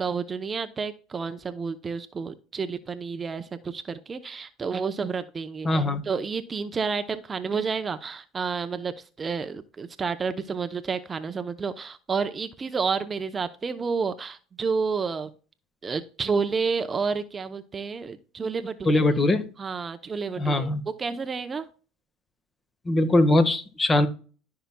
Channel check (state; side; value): normal; both; correlation 0.81